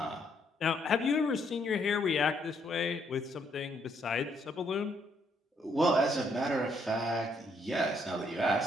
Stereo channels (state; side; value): normal; both; correlation 0.71